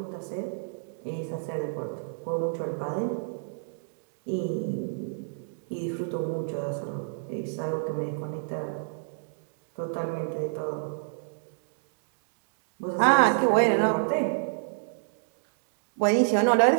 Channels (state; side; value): silent; left; digital silence